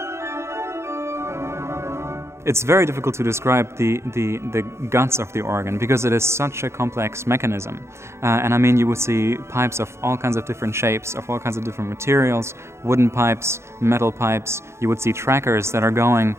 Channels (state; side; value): late; left; 0.13 ms